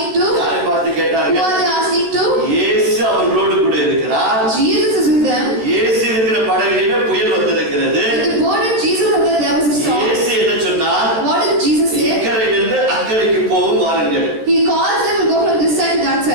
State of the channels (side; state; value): left; late; 13 ms